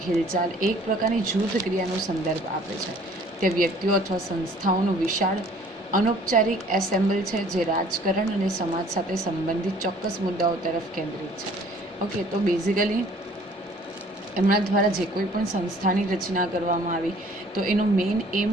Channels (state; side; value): normal; both; correlation 0.54